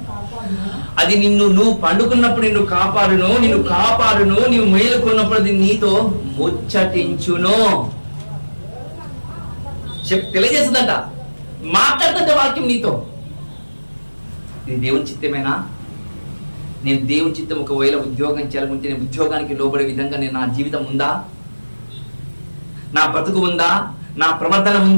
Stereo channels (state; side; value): inverted; both; correlation -1.00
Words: అది నువ్వు పండుకున్నప్పుడు నిన్ను కాపాడును, నీవు మేలుకున్నప్పుడు అది నీతో ముచ్చటించును. తెలియజేస్తుందంట, మాట్లాడుతుంటే వాక్యం నీతో. ఇది దేవుని చిత్తమేనా? నేను దేవుని చిత్తం ఒకవేళ ఉద్యోగం చేయాలనుకుంటే నేను ఉద్యోగానికి లోబడే విధంగా నా జీవితం ఉందా, నా బ్రతుకు ఉందా, నా ప్రవర్తన